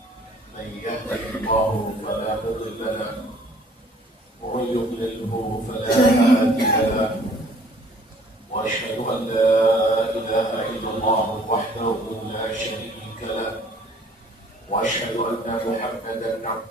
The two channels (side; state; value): both; normal; correlation 0.55